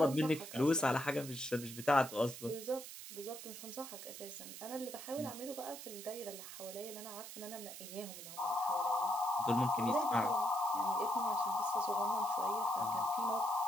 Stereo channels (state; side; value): noise; right; hiss, 11 dB below the sound